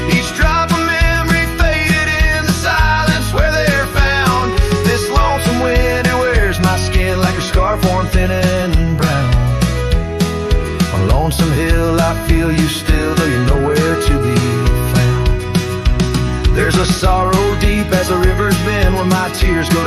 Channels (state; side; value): identical; both; correlation 1.00